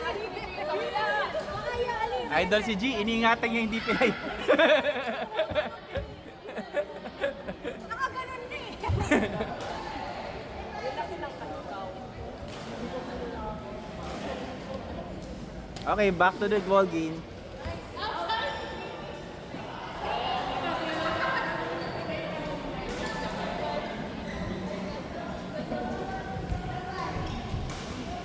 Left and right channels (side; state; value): both; identical; correlation 1.00